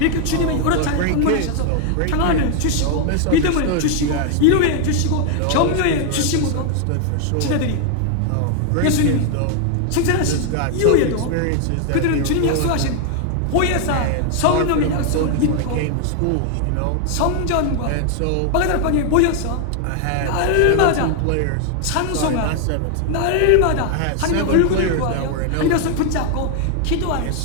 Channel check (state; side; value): different; both; correlation 0.00